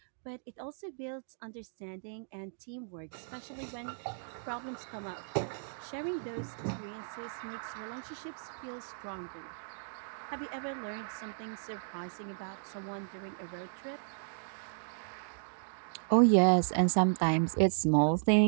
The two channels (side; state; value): left; silent; digital silence